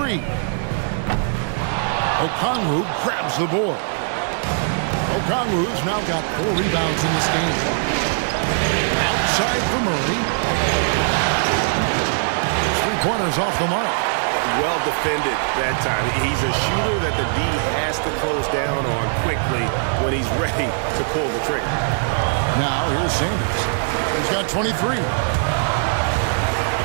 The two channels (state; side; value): silent; left; 65 dB below the other